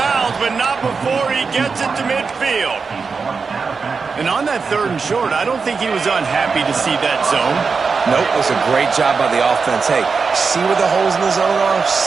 but not before he gets it to midfield. And on that 3rd and short, I don't think he was unhappy to see that zone. Nope, it was a great job by the offense. Hey, see where the holes in the zone are?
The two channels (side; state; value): left; quieter; 5.0 dB